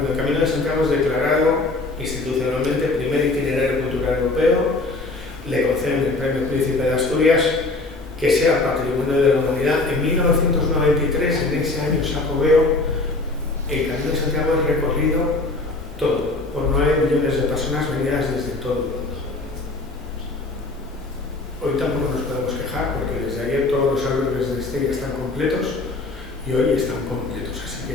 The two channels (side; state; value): right; quieter; 3.2 dB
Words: el Camino de Santiago es declarado institucionalmente primer itinerario cultural europeo, le conceden el premio Príncipe de Asturias, que sea Patrimonio de la Humanidad. En 1993, en ese año sacobeo, el Camino de Santiago es recorrido todo, por 9 millones de personas venidas desde todo el mundo. Hoy tampoco nos podemos quejar, porque desde ayer todos los albergues de Estella están completos y hoy están completos, así